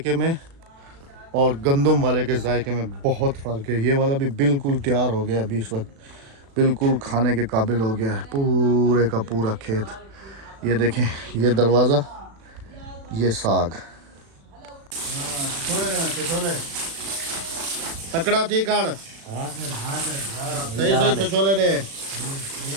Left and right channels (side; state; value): left; late; 36 ms